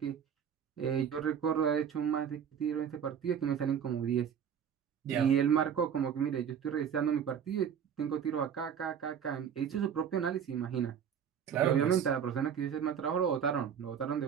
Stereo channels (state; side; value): quieter; left; 8.0 dB